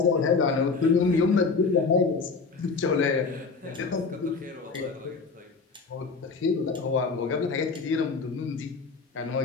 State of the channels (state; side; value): quieter; right; 4.6 dB